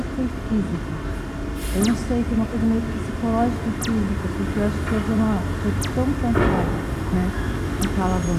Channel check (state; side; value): identical; both; correlation 1.00